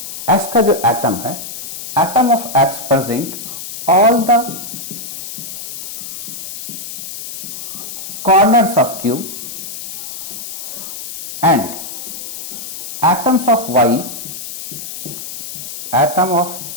x का जो एटम है, atom of x present all the corners of cube and atoms of y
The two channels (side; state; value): left; noise; hiss, 9 dB below the sound